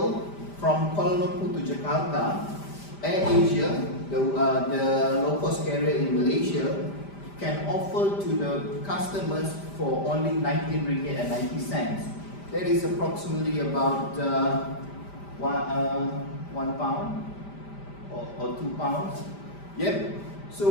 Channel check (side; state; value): right; late; 5.0 ms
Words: from Kuala Lumpur to Jakarta, AirAsia, the low-cost carrier in Malaysia, can offer to the customers for only 19 ringgit and 90 cents. That is approximately about one pound or 2 pounds. Yep.